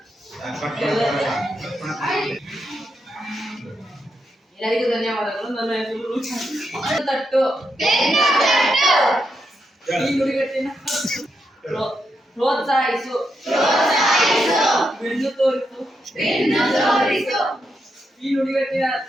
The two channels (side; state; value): both; normal; correlation 0.83